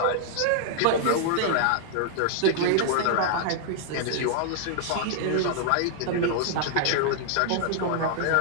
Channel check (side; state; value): both; different; correlation -0.01